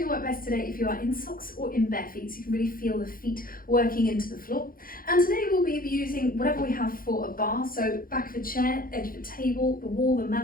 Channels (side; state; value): right; late; 0.42 ms